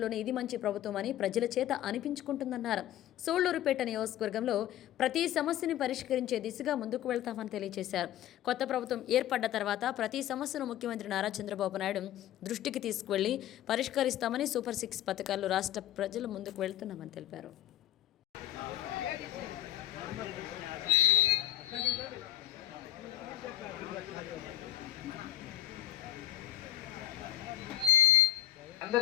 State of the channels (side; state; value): right; quieter; 12.8 dB